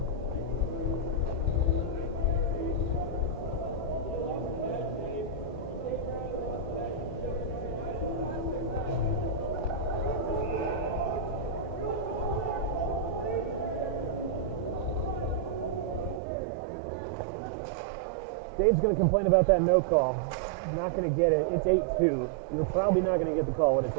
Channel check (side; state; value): left; drops out; at 16.2 s